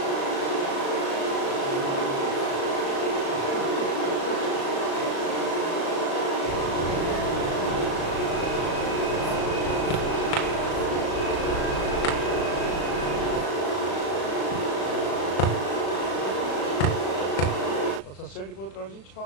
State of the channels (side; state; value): right; late; 36 ms